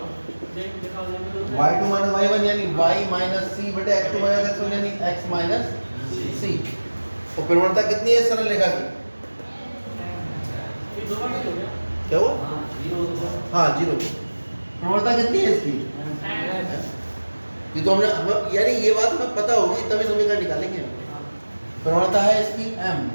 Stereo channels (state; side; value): inverted; both; correlation -1.00